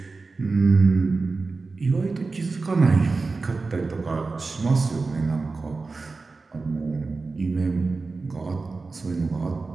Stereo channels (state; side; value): quieter; left; 4.0 dB